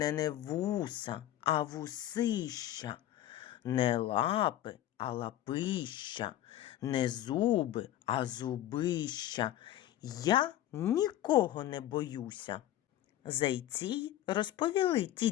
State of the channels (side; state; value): right; quieter; 13.0 dB